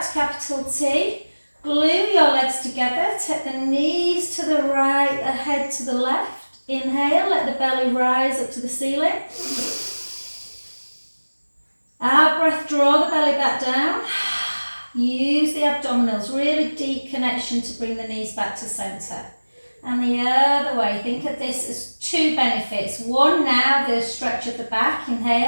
to capital T. Glue your legs together, take the knees to the right, the head to the left. Inhale, let the belly rise up to the ceiling. Out breath, draw the belly back down. Use the abdominals, really deep connection to bring the knees back to centre. And the other way, think of this as 2 benefits. One now, the stretch of the back.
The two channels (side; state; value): both; inverted; correlation -1.00